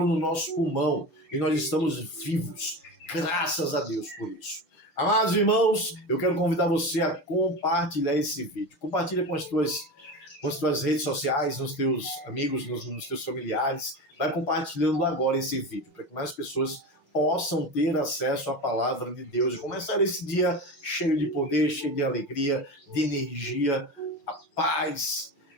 no nosso pulmão e nós estamos vivos. Graças a Deus por isso. Amados irmãos, eu quero convidar você a compartilhar esse vídeo. Compartilha com as tuas redes sociais, nos teus amigos, nos teus familiares. Vai compartilhando agora esse vídeo, para que mais pessoas possam ter acesso à palavra de Deus e começar esse dia cheio de poder, cheio de alegria, de energia, a paz,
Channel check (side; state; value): right; late; 6.3 ms